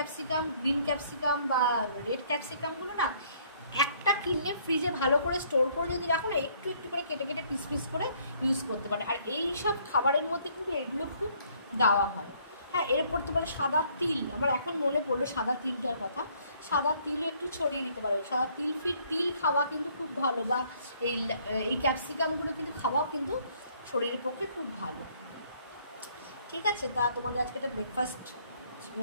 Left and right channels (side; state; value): both; inverted; correlation -0.63